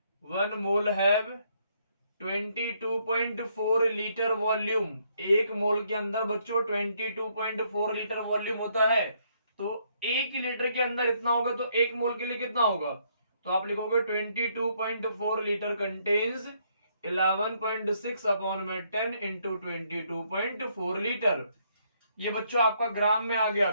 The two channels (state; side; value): inverted; both; correlation -0.71